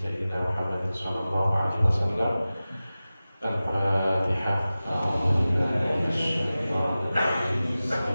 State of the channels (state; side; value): inverted; both; correlation -0.96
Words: Muhammadin sallallahu alaihi wasallam. Al-Fatihah. A'udzu billahi minasyaitonir rajim.